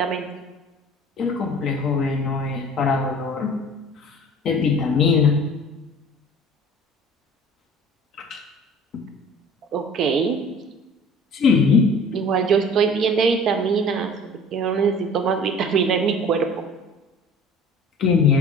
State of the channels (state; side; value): normal; both; correlation 0.46